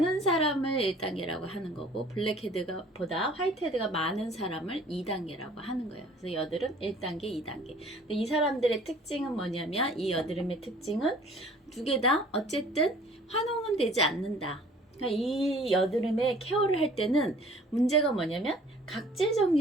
사람을 1단계라고 하는 거고, 블랙헤드가 보다 화이트헤드가 많은 사람을 2단계라고 하는 거예요. 그래서 여드름 1단계, 2단계. 근데 이 사람들의 특징은 뭐냐면, 이 여드름의 특징은 두 개 다 어쨌든 환웅은 되지 않는다. 그러니까 이 여드름의 케어를 할 때는 문제가 뭐냐면 각질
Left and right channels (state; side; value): normal; both; correlation 0.52